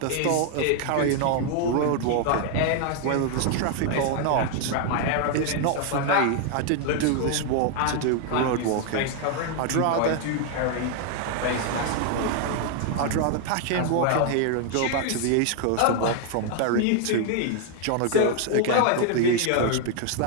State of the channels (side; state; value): both; different; correlation 0.00